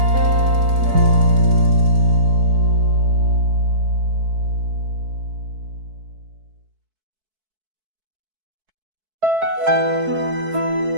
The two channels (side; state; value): left; late; 4.6 ms